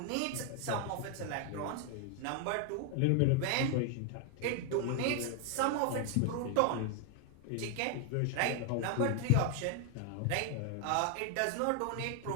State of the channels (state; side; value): different; both; correlation 0.00